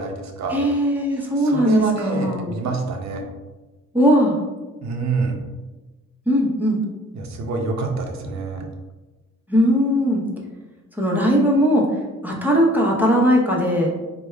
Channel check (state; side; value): normal; both; correlation 0.54